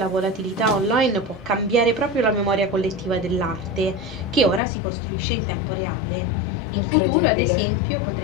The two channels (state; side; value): drops out; right; at 4.6 s